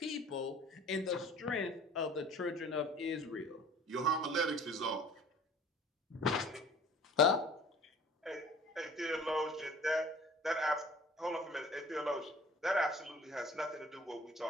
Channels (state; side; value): normal; both; correlation 0.48